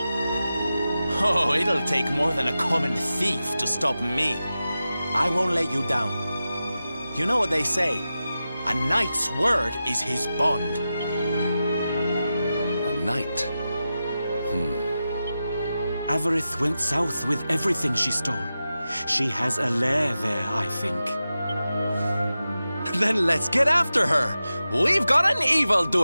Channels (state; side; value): inverted; both; correlation -0.93